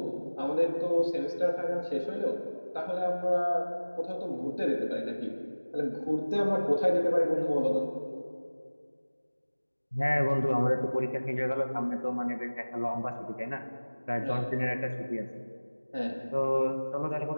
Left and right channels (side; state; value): both; inverted; correlation -1.00